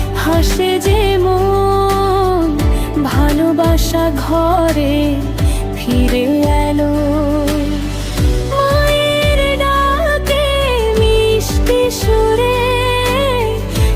হাসে যে মন, ভালোবাসা ঘরে ফিরে এলো। মায়ের ডাকে মিষ্টি সুরে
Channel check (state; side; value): identical; both; correlation 1.00